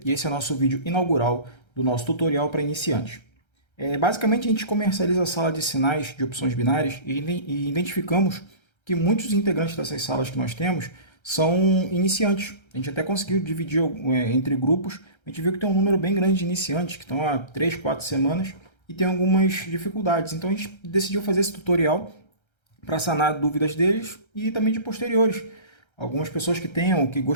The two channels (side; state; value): right; late; 1.3 ms